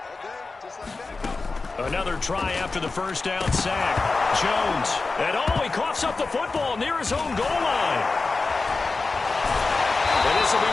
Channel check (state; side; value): quieter; right; 3.9 dB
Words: Another try after the first down sack. Jones. And he coughs up the football near his own goal line. And this will be